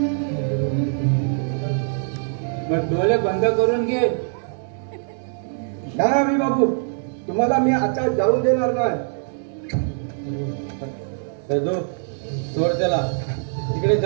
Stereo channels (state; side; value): silent; left; digital silence